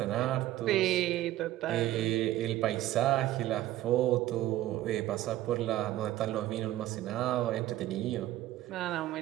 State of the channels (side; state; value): left; quieter; 14.7 dB